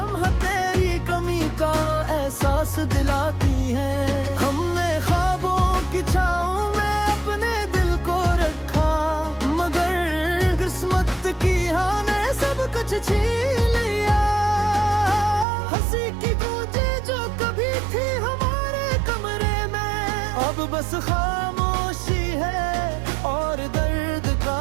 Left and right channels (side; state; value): left; drops out; at 15.5 s